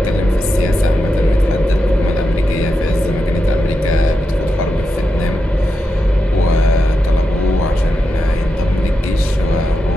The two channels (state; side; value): normal; both; correlation 0.87